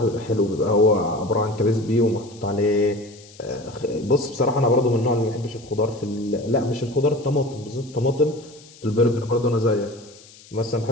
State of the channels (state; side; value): noise; left; hiss, 23 dB below the sound